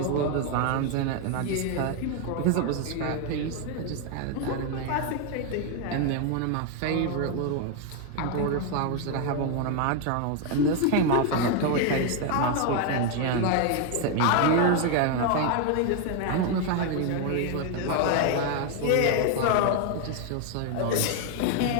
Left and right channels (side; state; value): both; different; correlation 0.01